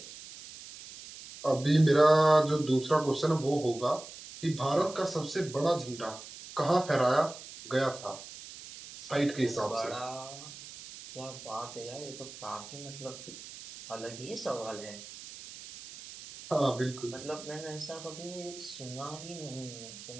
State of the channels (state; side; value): noise; right; hiss, 14 dB below the sound